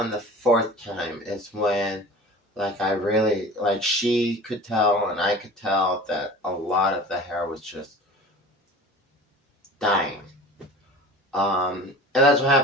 the fourth time is when, like, I really, like, she could tell and I could tell that a lot of the hair was just dying. And that's what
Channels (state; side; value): normal; both; correlation 0.39